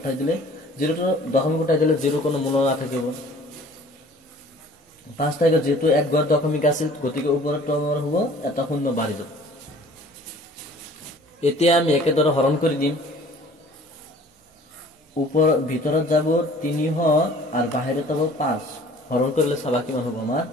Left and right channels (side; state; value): both; normal; correlation 0.50